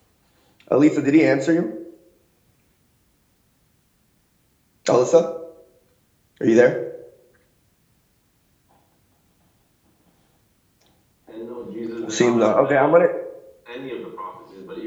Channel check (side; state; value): both; identical; correlation 1.00